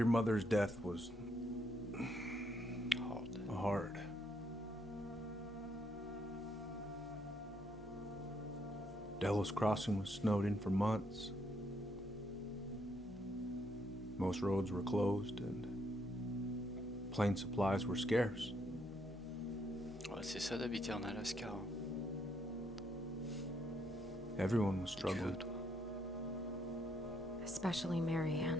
mother's death was hard. Delos Crossing was snowed in for months. Most roads were closed and plane supplies were scarce. Ouais, c'est ça d'habiter en Alaska. Hein. Everyone was struggling. Especially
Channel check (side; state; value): both; normal; correlation 0.74